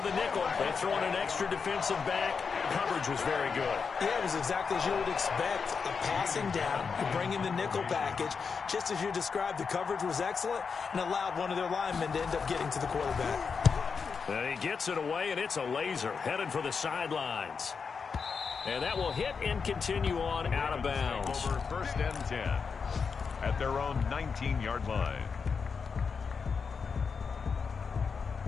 the nickel. They throw in an extra defensive back. Coverage was very good. Yeah, it was exactly as you would expect. A passing down. You bring in the nickel package. Just as you described, the coverage was excellent and allowed one of their linemen to end up getting to the quarterback. And he gets it away, and it's a laser headed for the sidelines. And that will hit and continue on out of bounds. Over 1st and 10 at their own 19-yard line.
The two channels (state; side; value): quieter; right; 5.5 dB